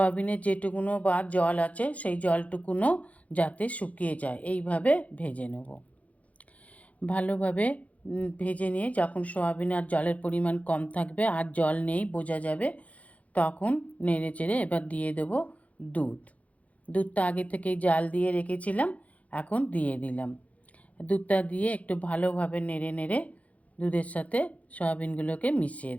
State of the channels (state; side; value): late; right; 0.068 ms